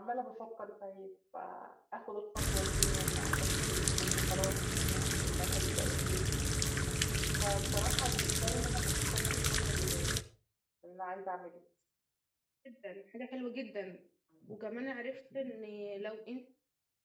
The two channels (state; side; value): identical; both; correlation 1.00